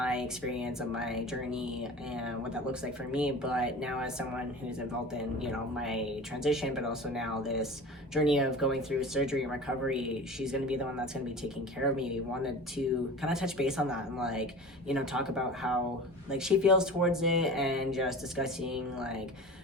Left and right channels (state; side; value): normal; both; correlation 0.36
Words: experience of my journey and what that looks like for me, but now as someone who's involved in, you know, my transition, but also now this journey of going through surgery and recovery, she's going to be the one that's going to be taking care of me. We wanted to kind of touch base on that and, like, you know, talk about how, like, she feels towards it and just discussing, like,